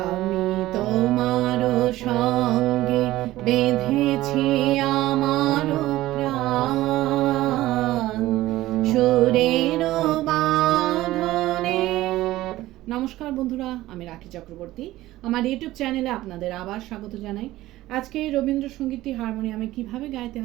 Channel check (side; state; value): left; quieter; 16.3 dB